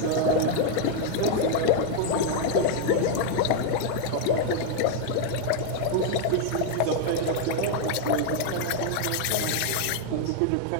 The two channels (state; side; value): different; both; correlation 0.00